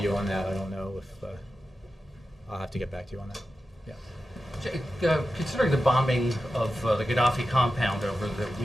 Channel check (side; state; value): both; normal; correlation 0.92